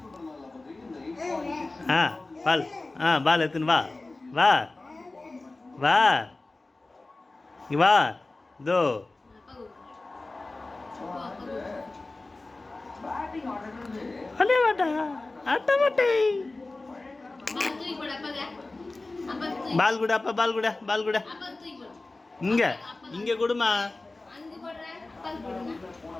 பால் பால் எடுத்துன்னு வா வா வா இங்கே வா இதோ. அடே வாடா அட்ட மாட்டே. பால் கூட அப்பா பால் கூட பால் கூட இங்கே இங்கே கொடுமா.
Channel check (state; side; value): quieter; right; 3.2 dB